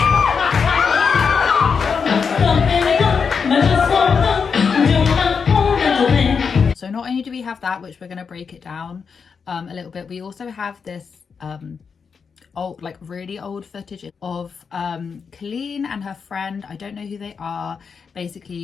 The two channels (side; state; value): right; quieter; 5.9 dB